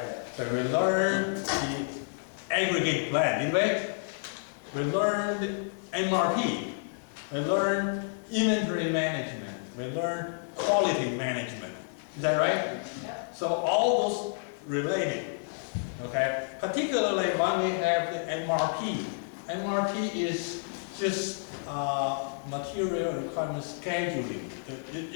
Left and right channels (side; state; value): right; silent; digital silence